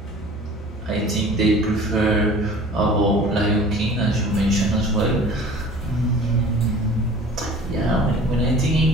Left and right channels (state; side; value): normal; both; correlation 0.45